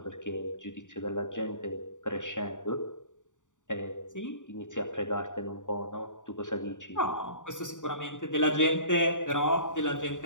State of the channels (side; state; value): right; late; 0.86 ms